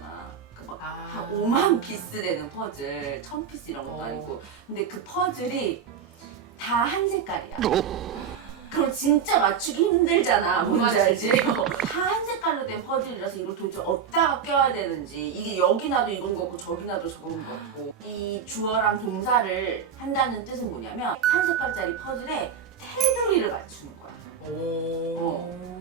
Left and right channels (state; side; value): quieter; left; 7.3 dB